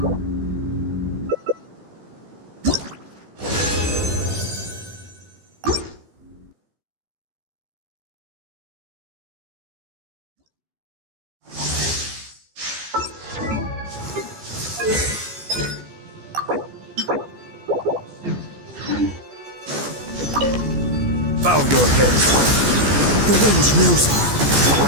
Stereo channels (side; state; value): left; late; 14 ms